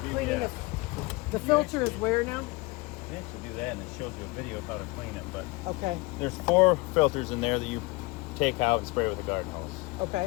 beauty, cleaning yeah. the filter is where now? You actually do that and it shows you a video of how to clean it. But Okay. there's 4 filters in there that you take out and spray with a garden hose. Okay.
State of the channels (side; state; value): right; quieter; 24.3 dB